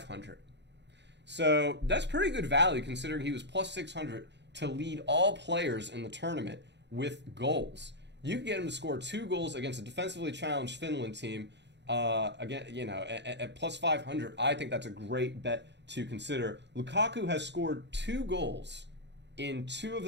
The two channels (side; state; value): left; late; 0.51 ms